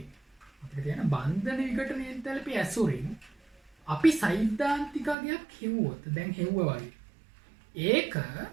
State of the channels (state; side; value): drops out; left; at 5.2 s